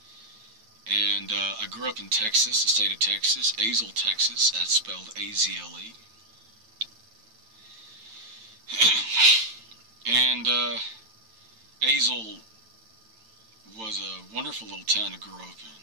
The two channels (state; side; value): late; left; 9.0 ms